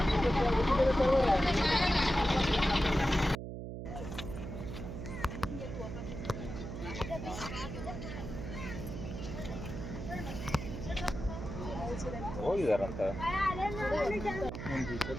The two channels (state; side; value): noise; right; hum, 7 dB below the sound